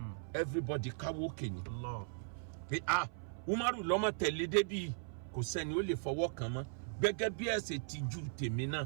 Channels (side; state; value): left; silent; 52 dB below the other